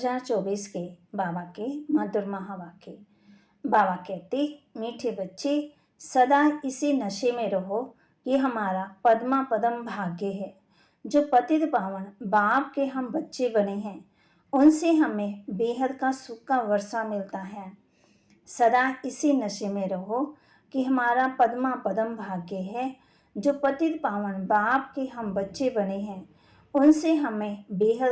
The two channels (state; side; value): identical; both; correlation 1.00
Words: के बाबा के मधुर महावाक्य। बाबा कहते, मीठे बच्चे सदा इसी नशे में रहो कि हमारा पद्मा पदम भाग्य है। जो पतित पावन बाप के हम बच्चे बने हैं, उनसे हमें बेहद का सुख का वर्षा मिलता है। सदा इसी नशे में रहो कि हमारा पद्मा पदम भाग्य है। जो पतित पावन बाप के हम बच्चे बने हैं, उनसे हमें